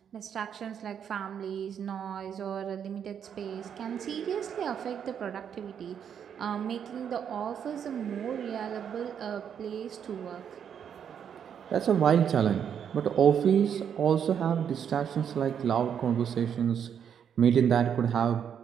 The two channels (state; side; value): quieter; left; 8.2 dB